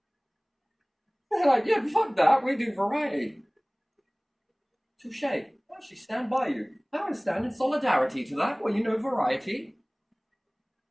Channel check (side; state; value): both; identical; correlation 1.00